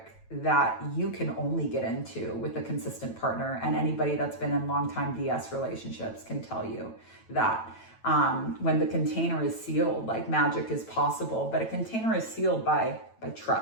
that you can only get into with a consistent partner. And anybody that's been in long-time DS relationships can tell you that when the container is sealed, like magic is possible, but a container is sealed by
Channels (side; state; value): right; late; 9.0 ms